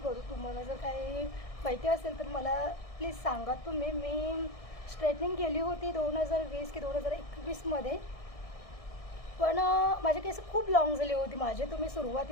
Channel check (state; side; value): late; right; 1.6 ms